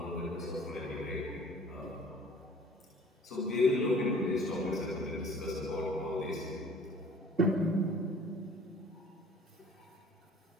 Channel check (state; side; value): normal; both; correlation 0.50